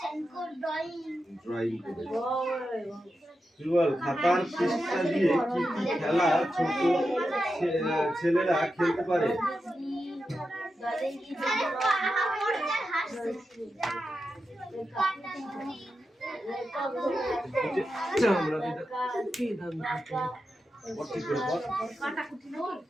ড্রয়িং করেছো। তুই বল, খাতার পৃষ্ঠা দিয়ে কি কি খেলা ছোট ছেলেরা খেলতে পারে?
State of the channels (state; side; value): normal; both; correlation 0.89